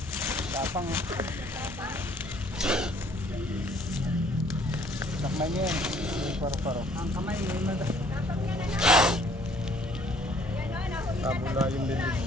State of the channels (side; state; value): both; normal; correlation 0.60